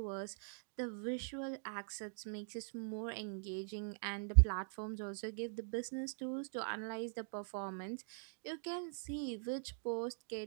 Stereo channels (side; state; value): left; silent; digital silence